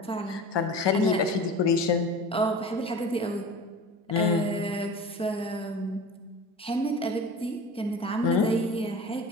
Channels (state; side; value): normal; both; correlation 0.36